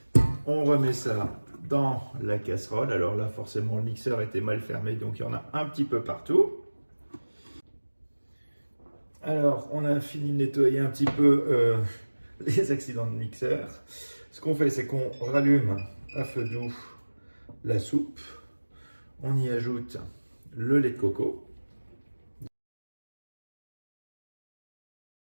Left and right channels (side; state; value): both; inverted; correlation -1.00